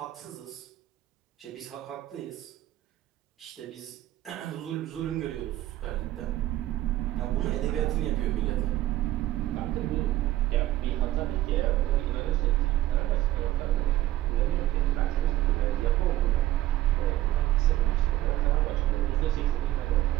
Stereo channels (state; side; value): quieter; left; 14.8 dB